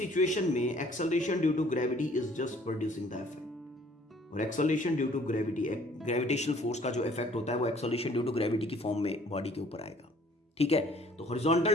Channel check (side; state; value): both; normal; correlation 0.57